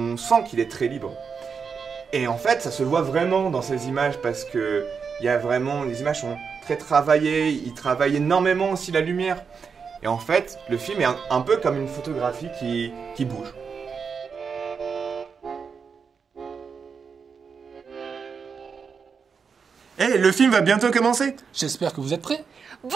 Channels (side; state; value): left; quieter; 5.9 dB